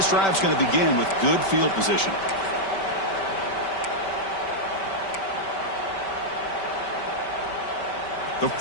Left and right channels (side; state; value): right; late; 5.2 ms